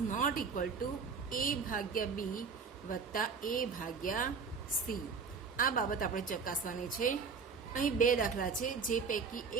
not equal to A/B + A/C. આ બાબત આપણે ચકાસવાની છે. અહીં 2 દાખલા છે, જે પૈકી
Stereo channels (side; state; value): left; quieter; 5.4 dB